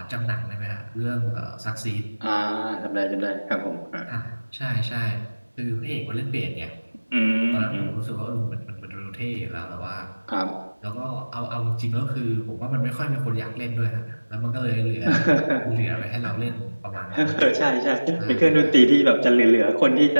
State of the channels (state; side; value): inverted; both; correlation -1.00